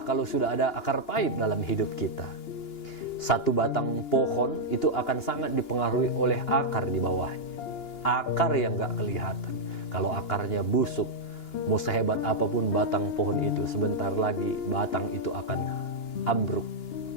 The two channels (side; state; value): right; late; 2.9 ms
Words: kalau sudah ada akar pahit dalam hidup kita. Satu batang pohon itu akan sangat dipengaruhi oleh akar di bawahnya. Akar yang gak kelihatan. Kalau akarnya busuk, mau sehebat apapun batang pohon itu, sebentar lagi batang itu akan ambruk.